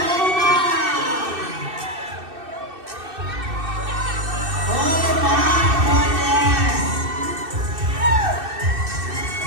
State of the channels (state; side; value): late; left; 2.6 ms